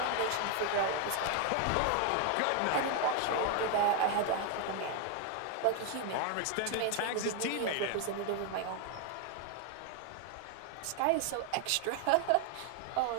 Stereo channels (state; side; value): different; both; correlation 0.01